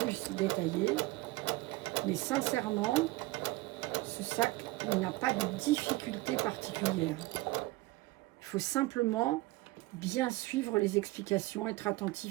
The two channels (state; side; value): quieter; left; 20.2 dB